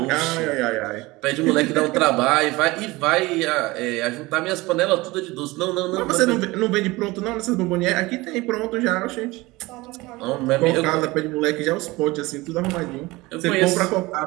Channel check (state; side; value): quieter; left; 21.3 dB